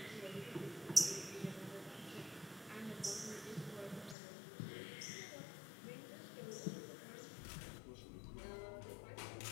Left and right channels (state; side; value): drops out; right; at 4.2 s